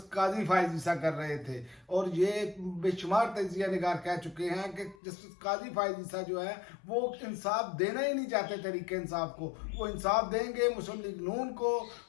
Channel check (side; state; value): right; drops out; at 5.0 s